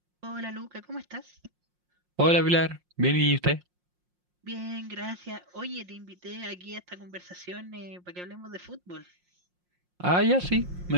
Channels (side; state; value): left; late; 5.6 ms